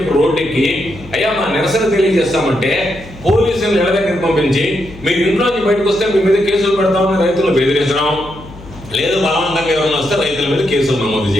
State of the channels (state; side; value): noise; left; hum, 18 dB below the sound